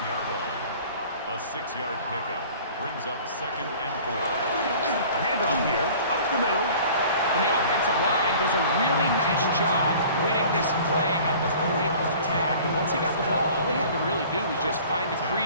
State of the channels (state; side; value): inverted; both; correlation -0.47